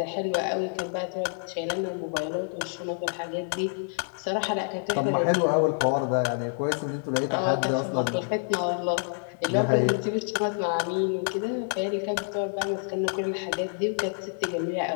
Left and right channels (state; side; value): silent; right; 60 dB below the other